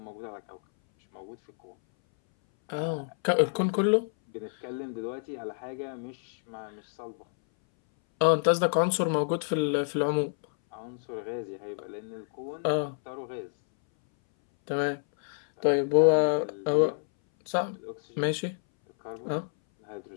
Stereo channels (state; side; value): silent; right; 59 dB below the other